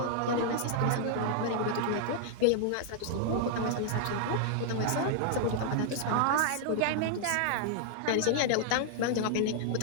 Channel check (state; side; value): different; both; correlation 0.00